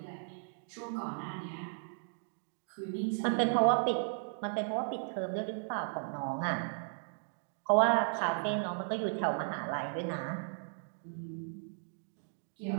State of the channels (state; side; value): silent; left; digital silence